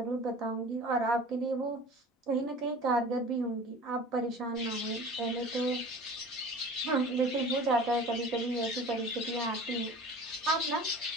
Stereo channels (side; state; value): both; normal; correlation 0.41